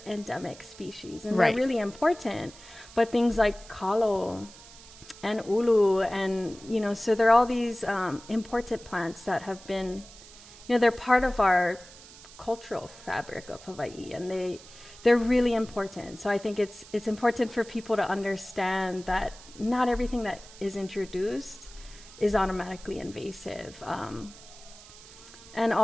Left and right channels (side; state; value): right; noise; hiss, 19 dB below the sound